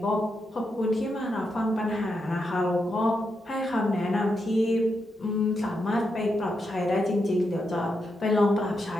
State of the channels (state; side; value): normal; both; correlation 0.84